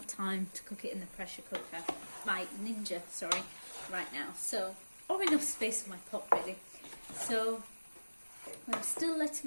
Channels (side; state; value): both; inverted; correlation -1.00